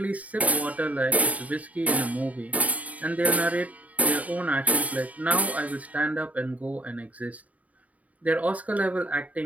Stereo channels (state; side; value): late; left; 0.070 ms